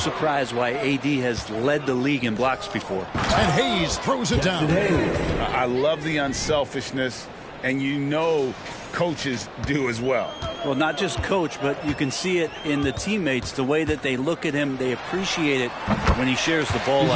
why AD has led the league in blocks before. And Hayes throws it down. I love the unselfishness, and you know coaches do as well. Well, not just coach, but you can see it in the teammates, the way that they look at him. They appreciate it when he shares the ball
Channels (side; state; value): both; identical; correlation 1.00